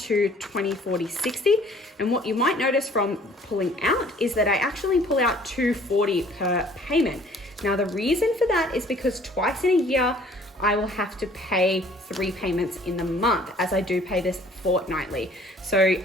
20, 40, 60. And what you might notice from pulling out is that I actually pull out $240 per payment. Now, the reason for that is because twice in a year, I will have to pay 3 payments in the month, as I do pay this fortnightly. So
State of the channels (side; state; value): both; normal; correlation 0.55